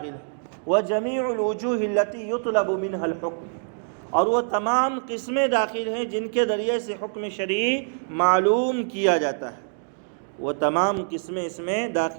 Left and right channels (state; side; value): silent; left; 62 dB below the other